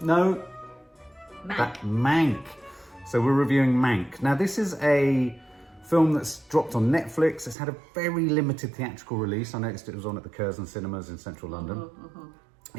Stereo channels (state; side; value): drops out; left; at 7.6 s